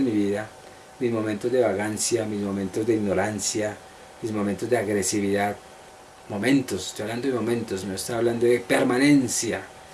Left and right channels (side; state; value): both; identical; correlation 1.00